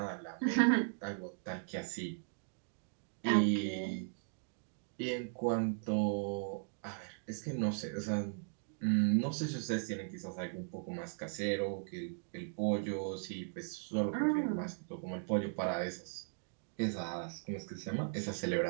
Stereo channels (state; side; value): silent; left; digital silence